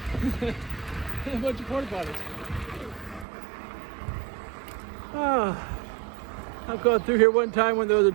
A bunch of porta potties. Ah. I've gone through here one time when there was a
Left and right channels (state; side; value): drops out; left; at 3.2 s